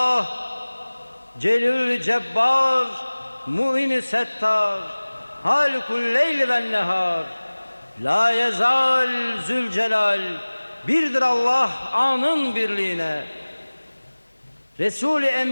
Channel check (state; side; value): inverted; both; correlation -1.00